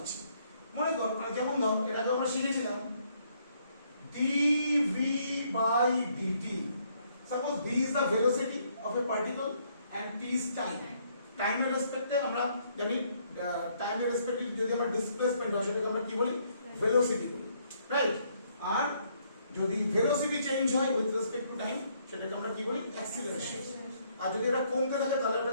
মনে কর মানে যেমন ধর এটাকে আমরা শিখেছিলাম dv by dt. Suppose v is the velocity of a particle and t is time. Time এর রেসপেক্টে আমরা জানি টাইম এর রেসপেক্টে যদি আমরা ডিসপ্লেসমেন্ট হয় সেটাকে আমরা কি বলি, ভেলোসিটি বলি, রাইট? আর যদি ভেলোসিটি চেঞ্জ হয় উইথ রেসপেক্ট টু টাইম সেটাকে আমরা কি বলি, অ্যাক্সিলারেশন। আর যদি এটা কমতে থাকে তাহলে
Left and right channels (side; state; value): both; inverted; correlation -0.70